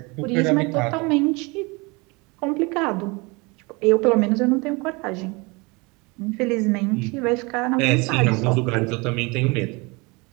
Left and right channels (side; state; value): left; quieter; 27.0 dB